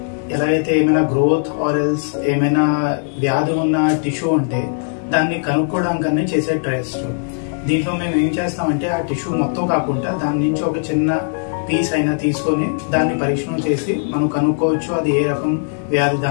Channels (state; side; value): silent; right; 67 dB below the other